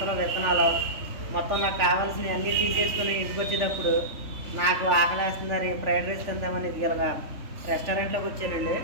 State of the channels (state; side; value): late; left; 3.4 ms